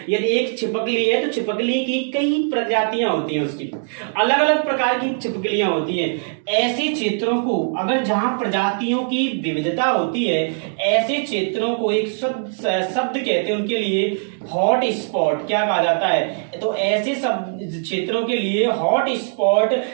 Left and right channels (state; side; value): silent; left; digital silence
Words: यदि एक छिपकली है तो छिपकली की कई प्रजातियां होती हैं, उसकी अलग अलग प्रकार की छिपकलियां होती हैं। ऐसे क्षेत्रों को, अगर जहां प्रजातियों की विविधता होती है, ऐसे क्षेत्रों को एक शब्द कहते हैं उनके लिए हॉट स्पॉट, क्या कहा जाता है, तो ऐसे सब क्षेत्रों के लिए हॉट स्पॉट